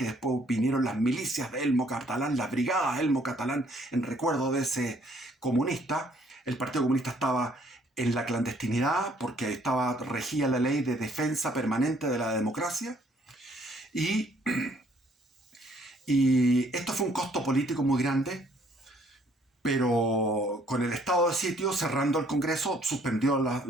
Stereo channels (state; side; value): normal; both; correlation 0.64